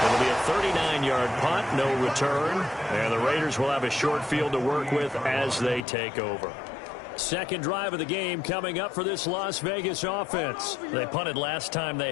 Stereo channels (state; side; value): drops out; right; at 5.8 s